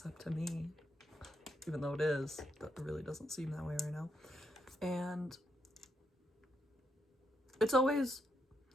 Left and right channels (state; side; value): normal; both; correlation 0.79